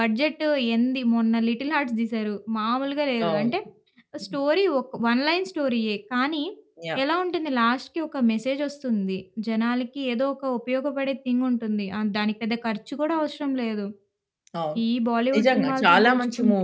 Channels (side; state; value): both; identical; correlation 1.00